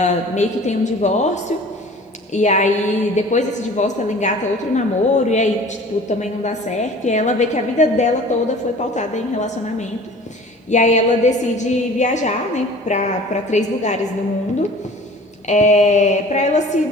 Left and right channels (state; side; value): normal; both; correlation 0.45